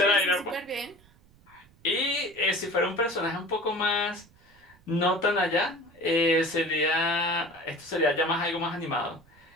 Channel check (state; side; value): noise; right; rumble, 29 dB below the sound